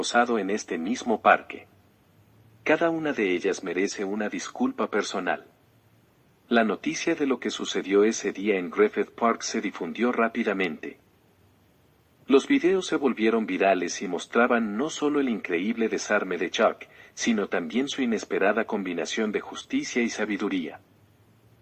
en este mismo parque. Cada una de ellas merece una disculpa personal. La noticia de lo que sucedió ese día en Griffith Park se difundió rápidamente. Los videos se volvieron virales y mostraban no solo el increíble desarme de Chuck, sino también su inesperada combinación de justicia y sabiduría.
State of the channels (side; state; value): both; identical; correlation 1.00